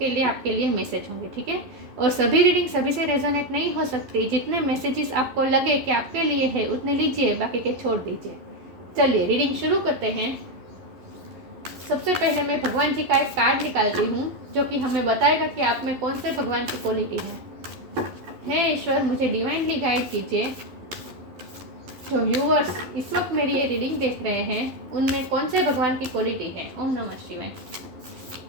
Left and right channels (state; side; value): late; left; 11 ms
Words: लिए आपके लिए मैसेज होंगे, ठीक है। और सभी रीडिंग सभी से रेजोनेट नहीं हो सकती। जितने मैसेजेस आपको लगे कि आपके लिए है उतने लीजिए, बाकी के छोड़ दीजिए। चलिए रीडिंग शुरू करते हैं। सबसे पहले मैं भगवान जी का एक कार्ड निकालती हूँ जो कि हमें बताएगा कि आप में कौन से भगवान की क्वालिटी है। हे ईश्वर, मुझे डिवाइनली गाइड कीजिए। जो व्यूअर्स इस वक्त मेरी ये रीडिंग देख रहे हैं उनमें कौन से भगवान की क्वालिटी है। ओम नमः शिवाय।